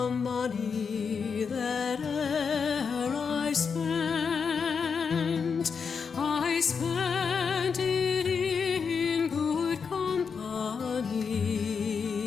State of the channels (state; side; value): quieter; right; 5.9 dB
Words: money that e'er I spent it in good company,